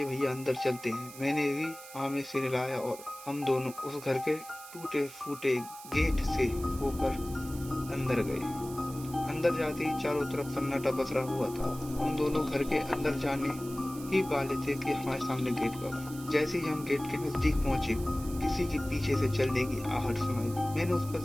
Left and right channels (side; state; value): right; noise; hiss, 16 dB below the sound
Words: भैया अंदर चलते हैं। मैंने भी हाँ में सिर हिलाया और हम दोनों उस घर के टूटे फूटे गेट से होकर अंदर गए। अंदर जाते ही चारों तरफ सन्नाटा पसरा हुआ था। हम दोनों घर के अंदर जाने ही वाले थे कि हमारे सामने गेट पर। जैसे ही हम गेट के नजदीक पहुंचे, किसी के पीछे से चलने की आहट सुनाई दी। मैंने उस पर